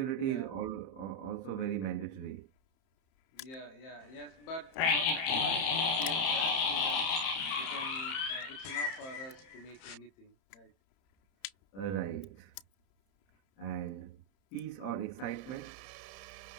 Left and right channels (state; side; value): late; right; 31 ms